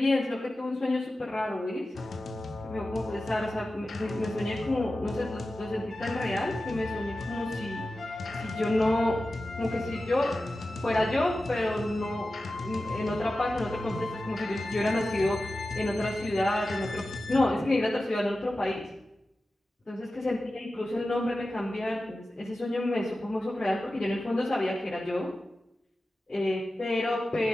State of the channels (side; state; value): both; normal; correlation 0.94